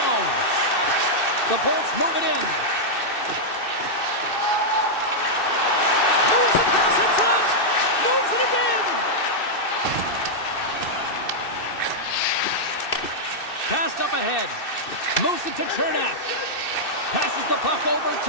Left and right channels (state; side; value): late; right; 2.6 ms